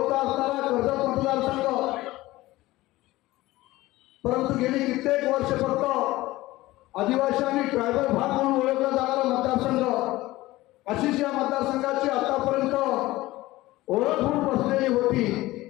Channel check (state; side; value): quieter; right; 18.1 dB